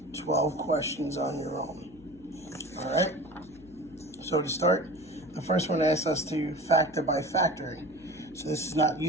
12 questions on your own. Alright, so to start, the first one asks us to factor by factoring. So this is not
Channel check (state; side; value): noise; left; hum, 24 dB below the sound